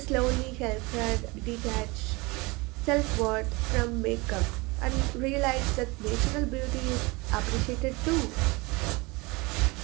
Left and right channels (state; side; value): quieter; left; 25.0 dB